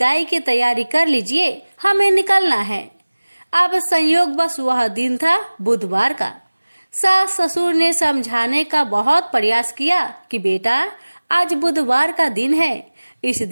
की तैयारी कर लीजिए, हमें निकलना है। अब संयोग बस वह दिन था बुधवार का। सास ससुर ने समझाने का बहुत प्रयास किया कि बेटा, आज बुधवार का दिन है, इस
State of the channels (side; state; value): both; inverted; correlation -1.00